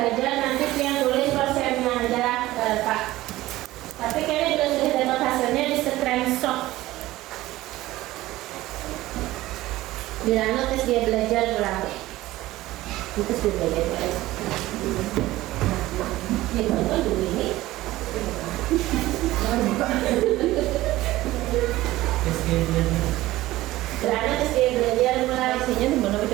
nanti yang tulis persennya aja Pak. Tapi kayaknya sudah dapat hasilnya di screenshot. Bilangnya tes dia belajar pulang. Terus dia belajar. Ya betul dulu ini. Bilangnya tes dia belajar mulai. Isinya di mana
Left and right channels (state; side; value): quieter; left; 16.9 dB